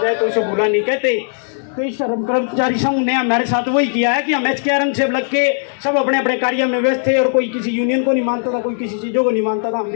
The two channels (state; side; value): silent; right; digital silence